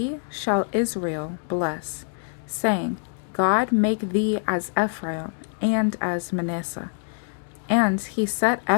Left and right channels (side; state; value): right; silent; 62 dB below the other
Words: shall Israel bless, saying, God make thee as Ephraim and as Manasseh. And he set